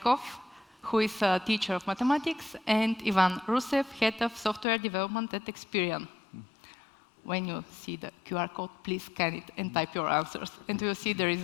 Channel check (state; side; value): drops out; right; at 4.7 s